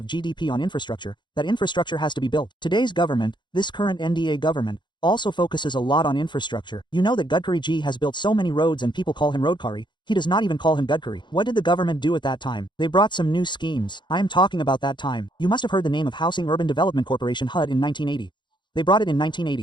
GDP on infrastructure. That infrastructure has to be built. Today's government, this current NDA government, also focuses a lot on infrastructure. You know that Gadkari ji has built so many roads and people call him Roadkari. He does not even call him Gadkari. What did the government do at that time? They brought some new schemes. I am talking about that time. You must have heard the name of Housing Urban Development Corporation HUD in 1980. They brought it in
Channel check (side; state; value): right; late; 0.22 ms